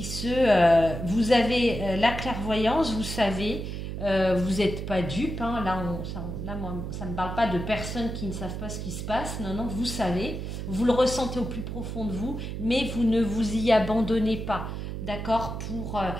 vous avez la clairvoyance, vous savez, vous n'êtes pas dupes, hein. Moi, ça ne parle pas de personnes qui ne savent pas ce qui se passe, non, vous savez, vous le ressentez au plus profond de vous, mais vous ne vous y abandonnez pas, d'accord, pour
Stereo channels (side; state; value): right; noise; hum, 6 dB below the sound